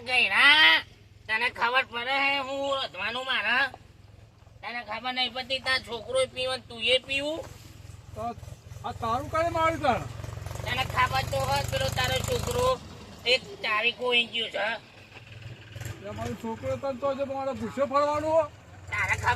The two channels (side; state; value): both; identical; correlation 1.00